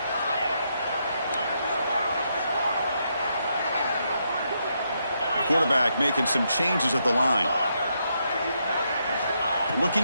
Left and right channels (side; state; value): both; inverted; correlation -0.79